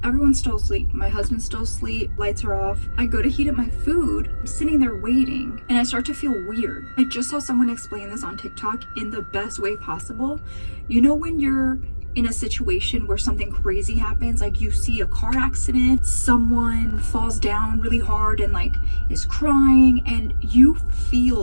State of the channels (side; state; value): both; inverted; correlation -1.00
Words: everyone's still asleep. My husband's still asleep, lights are off. I go to heat up my food. I'm sitting there waiting and I start to feel weird. I just saw someone explain this on TikTok in the best way possible. You know when you're in a situation where something crazy happens, like you see a car accident, someone falls down really hard and like is crying, and you